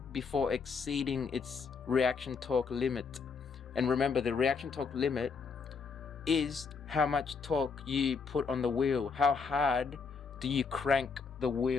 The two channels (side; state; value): right; quieter; 5.3 dB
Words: before exceeding its reaction torque limit. And remember, the reaction torque limit is how much torque you put on the wheel. How hard do you crank the